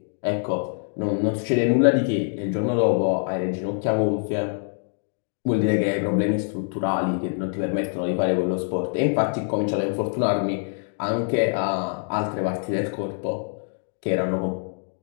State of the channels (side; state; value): right; silent; 61 dB below the other